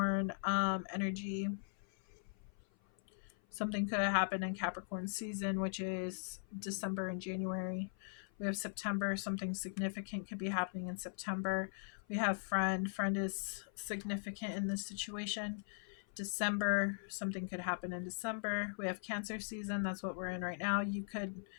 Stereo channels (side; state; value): right; silent; 51 dB below the other